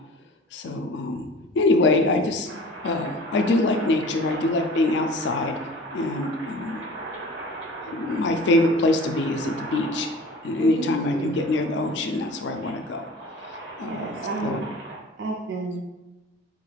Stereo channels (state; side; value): normal; both; correlation 0.42